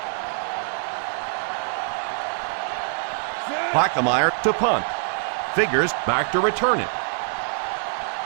Plackemire to punt. Figures back to return it.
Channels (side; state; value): left; silent; digital silence